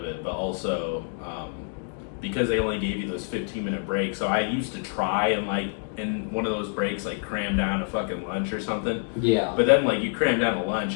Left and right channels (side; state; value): right; silent; 58 dB below the other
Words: it, but also because they only gave you those 15-minute breaks. So I used to try and like in one of those breaks like cram down a fucking lunch or something. Yeah. But then like you cram down a lunch